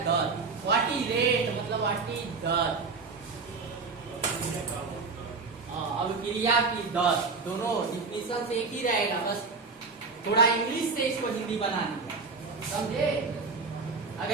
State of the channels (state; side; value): quieter; left; 4.4 dB